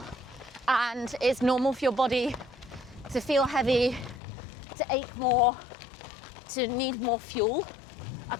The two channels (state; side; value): drops out; right; at 4.2 s